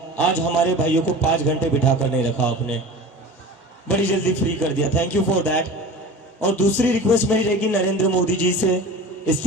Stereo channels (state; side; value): normal; both; correlation 0.35